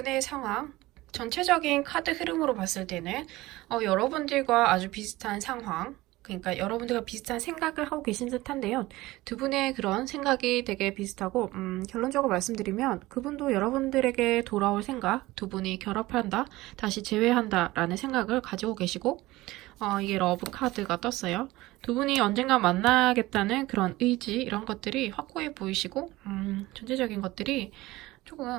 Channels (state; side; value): quieter; left; 18.8 dB